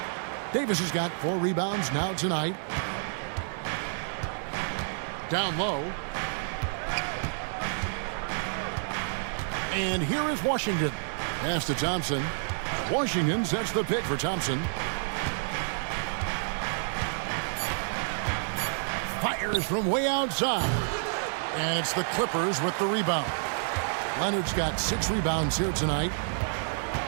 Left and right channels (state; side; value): silent; left; 58 dB below the other